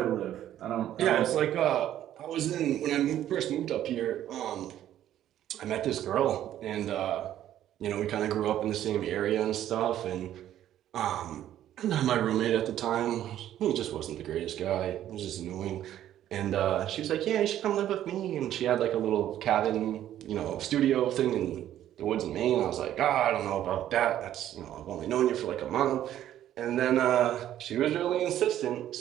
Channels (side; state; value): left; quieter; 11.8 dB